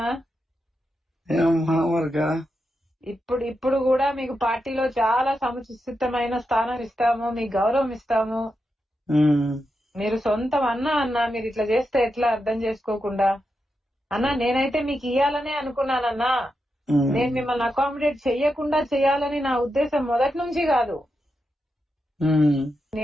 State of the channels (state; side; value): normal; both; correlation 0.87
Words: ఏమమ్మా మరికా? ఇప్పుడు కూడా మీకు పార్టీలో చాలా సముచితమైన స్థానం ఇస్తాము, మీకు గౌరవం ఇస్తాము. మీరు సొంతం అన్న మీరు ఇట్లా చేస్తే ఎట్లా అర్థం చేసుకోకుండా? అన్నా నేనైతే మీకు ఇయ్యాలనే అనుకున్నానన్నా. నేను మిమ్మల్ని అకామిడేట్ చెయ్యకుండా చెయ్యాలని నా ఉద్దేశం మొదటి నుంచి కాదు.